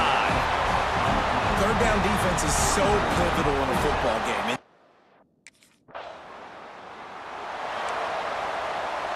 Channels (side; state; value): both; identical; correlation 1.00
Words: Third down defense is so pivotal in a football game.